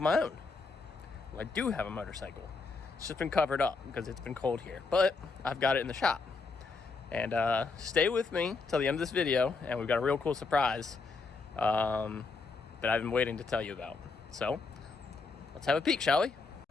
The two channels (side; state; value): right; quieter; 4.2 dB